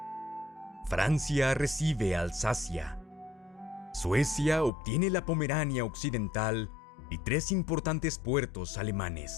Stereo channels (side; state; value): right; drops out; at 4.7 s